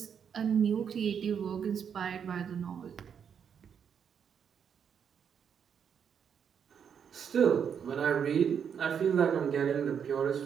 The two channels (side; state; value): left; quieter; 7.5 dB